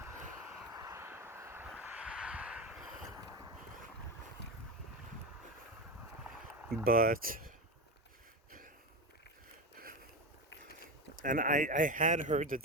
But, and I had heard that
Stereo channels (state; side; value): normal; both; correlation 0.19